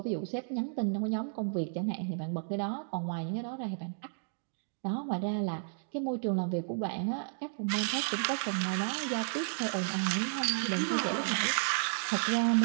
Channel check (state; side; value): silent; left; digital silence